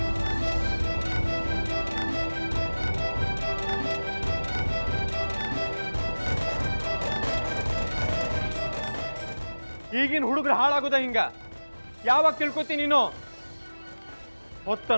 ಈಗಿನ ಹುಡುಗರು ಹಾಳಾಗೋದ ಹಿಂಗ? ಯಾವಾಗ ತಿಳ್ಕೊತಿ ನೀನು?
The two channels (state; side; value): inverted; both; correlation -1.00